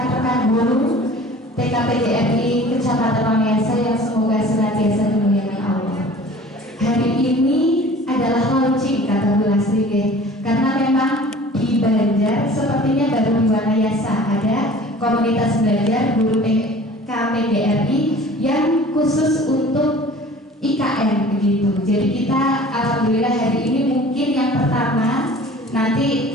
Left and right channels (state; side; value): normal; both; correlation 0.46